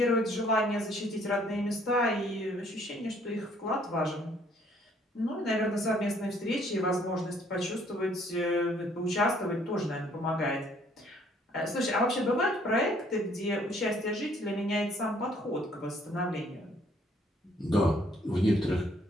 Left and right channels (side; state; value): both; normal; correlation 0.63